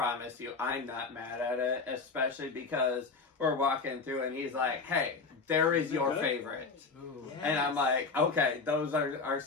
you, I'm not mad at it, especially because we're walking through and he's like, "Hey, there is your favorite," and I'm like, "Okay, those are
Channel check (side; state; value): right; quieter; 4.4 dB